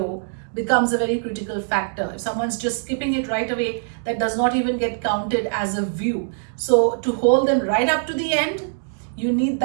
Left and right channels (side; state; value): left; silent; digital silence